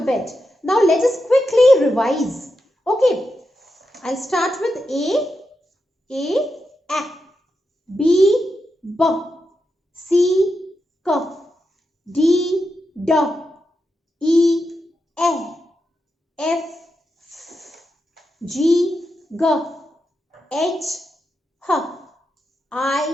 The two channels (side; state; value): both; normal; correlation 0.87